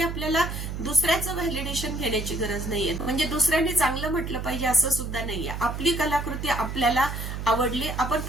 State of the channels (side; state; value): right; noise; hum, 6 dB below the sound